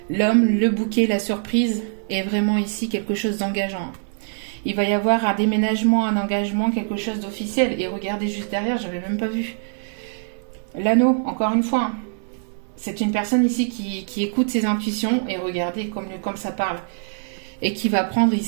L'homme, le bouquet, la surprise est vraiment ici quelque chose d'engageant. Il va y avoir un déménagement, un engagement, quelque chose d'officiel. Et regardez juste derrière, j'avais même pas vu. L'anneau, encore une fois. Hein. C'est une personne ici qui écoute ses intuitions et regardez comme ça parle. Et qui va prendre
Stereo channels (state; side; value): silent; left; digital silence